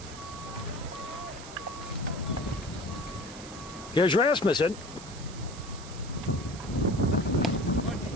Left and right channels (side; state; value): right; noise; hiss, 15 dB below the sound